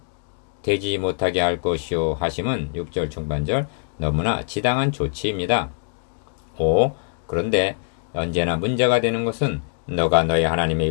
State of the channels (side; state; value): right; silent; digital silence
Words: 되지 못하게 할 것이요 하심은 6절 중반절 너무나 지당한 조치입니다. 5. 그런데 언제나 문제가 되는 것은 너가 너의 하나님의